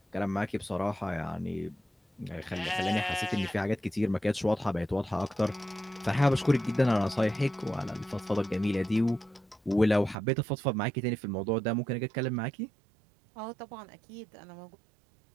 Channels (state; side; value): drops out; left; at 10.2 s